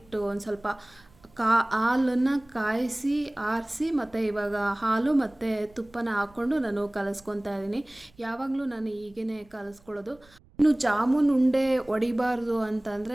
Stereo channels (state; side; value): noise; right; rumble, 29 dB below the sound